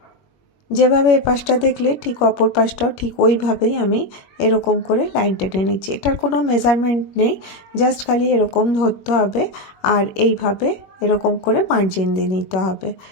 যেভাবে এ পাশটা দেখলে ঠিক অপর পাশটাও ঠিক ওইভাবেই আমি এরকম করে লাইন টেনে নিচ্ছি। এটার কোনো মেজারমেন্ট নেই, জাস্ট খালি এরকম ধরতে হবে আর এইভাবে এরকম করে মার্জিন দিয়ে নিতে হবে।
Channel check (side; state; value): right; late; 21 ms